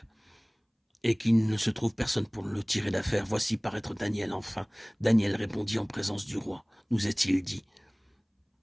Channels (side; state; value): both; identical; correlation 1.00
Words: et qu'il ne se trouve personne pour le tirer d'affaire, voici paraître Daniel enfin. Daniel répondit en présence du roi. Nous est-il dit?